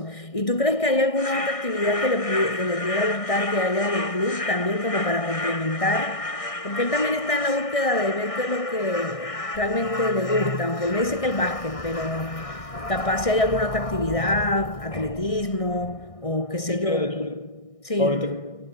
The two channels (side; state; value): right; late; 1.6 ms